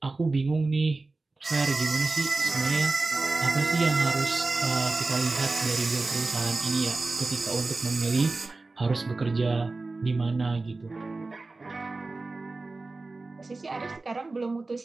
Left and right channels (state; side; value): quieter; left; 3.5 dB